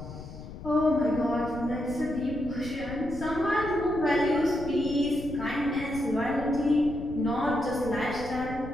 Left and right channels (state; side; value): noise; left; rumble, 12 dB below the sound